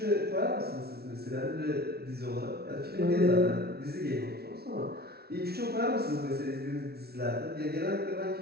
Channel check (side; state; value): left; late; 0.45 ms